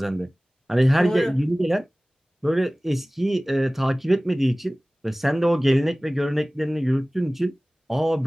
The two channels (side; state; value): both; normal; correlation 0.98